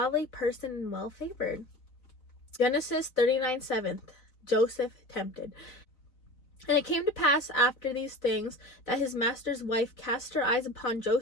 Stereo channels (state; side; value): late; right; 4.0 ms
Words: person and well favored. Genesis 39:7, Joseph tempted. And it came to pass after these things that his master's wife cast her eyes upon